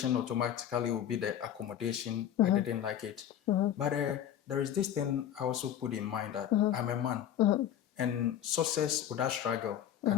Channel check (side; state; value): right; quieter; 10.4 dB